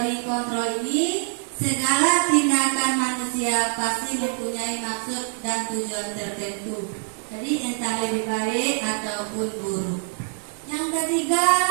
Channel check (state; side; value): silent; left; 62 dB below the other